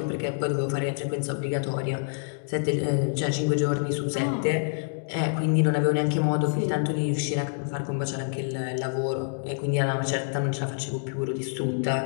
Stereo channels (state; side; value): silent; right; digital silence